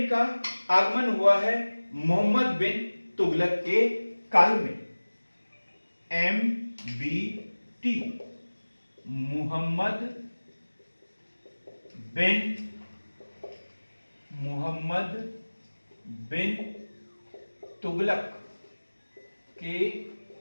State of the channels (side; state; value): both; inverted; correlation -1.00